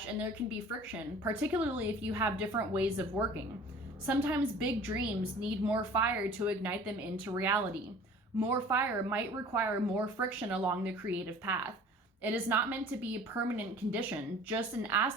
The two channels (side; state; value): both; normal; correlation 0.47